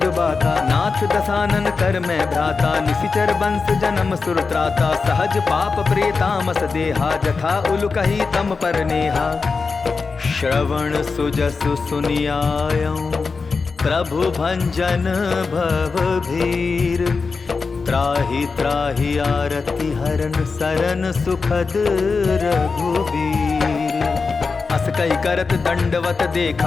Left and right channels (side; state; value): right; quieter; 4.6 dB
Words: बाता। नाथ दसानन कर मैं भ्राता निशिचर बंस जन्म सुर त्राता। सहज पाप प्रेतामस देहा जथा उल कही तम पर नेहा। श्रवण सुजसु सुनियायऊं प्रभु भंजन भव भीर। त्राहि त्राहि आरति हरन सरन सुखद रघुबीर। अस कही करत दंडवत